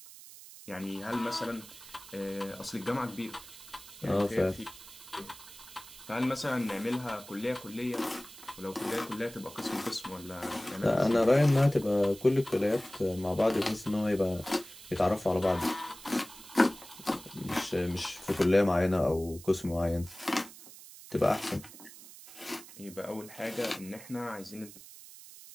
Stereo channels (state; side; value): noise; right; hiss, 17 dB below the sound